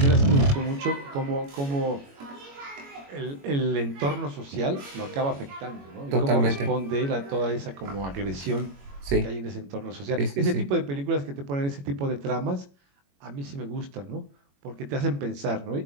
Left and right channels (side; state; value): left; late; 21 ms